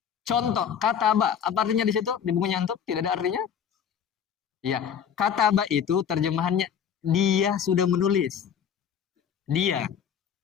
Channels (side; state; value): right; quieter; 8.2 dB